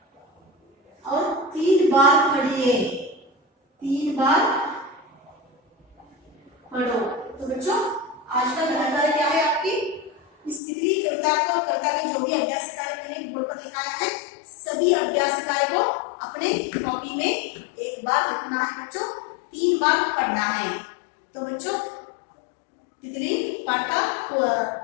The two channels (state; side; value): drops out; right; at 10.6 s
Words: और 3 बार पढ़िए, 3 बार पढ़ो। तो बच्चों आज का गृह कार्य क्या है आपकी? इस तितली कविता के जो भी अभ्यास कार्य मैंने बोर्ड पर लिखाया है, सभी अभ्यास कार्य को अपने कॉपी में एक बार लिखना है बच्चों, 3 बार पढ़ना है। तो बच्चों तितली पाठ का